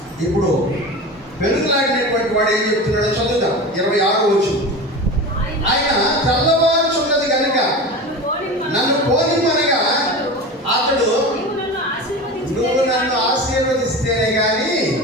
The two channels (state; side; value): normal; both; correlation 0.29